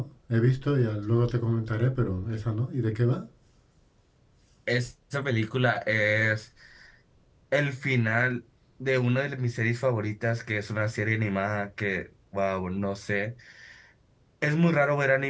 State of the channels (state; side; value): identical; both; correlation 1.00